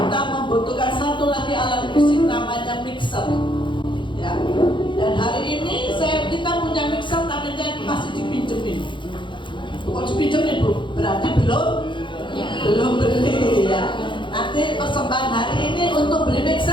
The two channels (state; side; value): late; right; 0.23 ms